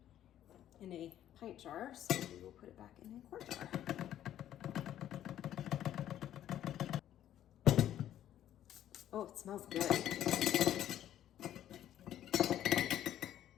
a pint jar, so we will put it back in a quart jar. Oh, it smells good.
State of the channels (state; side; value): quieter; right; 11.6 dB